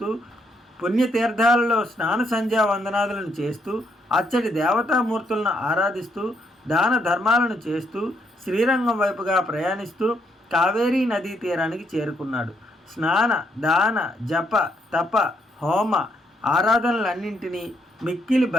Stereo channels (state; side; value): normal; both; correlation 0.74